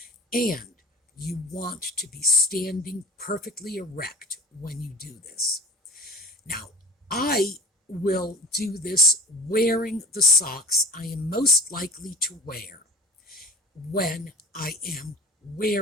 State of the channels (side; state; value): both; normal; correlation 0.34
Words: And you want to be standing perfectly erect when you do this. Now, I will do this wearing the socks I am most likely to wear when I am